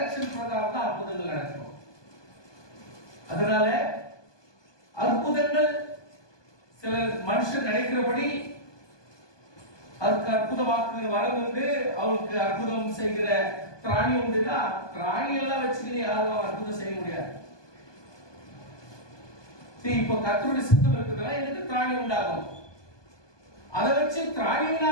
பிரகாரம் தான் அற்புதங்கள் நடக்கும். அதனால அற்புதங்கள் சில மனுஷன் நினைக்கிறபடி அதுக்கு அற்புதமாக்குகிற வரம் உண்டு, அவளுக்கு அற்புதம் செய்கிற திராணி உண்டுன்னா திராணி எல்லாம் வச்சுக்கிட்டு யாரும் அற்புதம் செய்ய முடியாது. இப்ப கர்த்தருடைய சித்தம் இருக்குதுன்னா எனக்கு திராணி உண்டாகும். அதை வச்சு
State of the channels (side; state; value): right; late; 1.2 ms